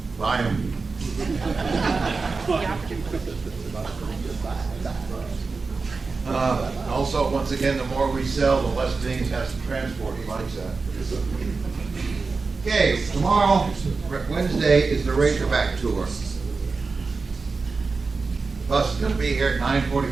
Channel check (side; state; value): left; quieter; 4.3 dB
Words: Buy them. Also, once again, the more we sell, the less things has to transport. He likes that. Okay, tomorrow, Wednesday, is the Razorback Tour. The bus is going to be here at